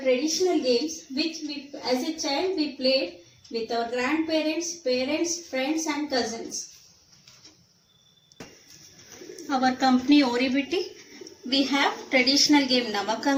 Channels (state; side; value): identical; both; correlation 1.00